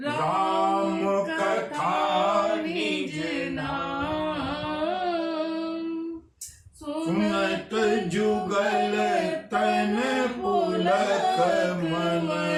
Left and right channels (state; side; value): identical; both; correlation 1.00